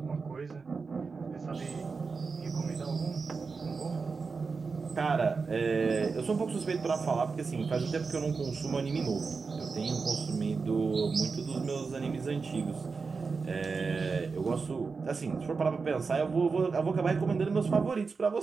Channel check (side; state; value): left; quieter; 4.7 dB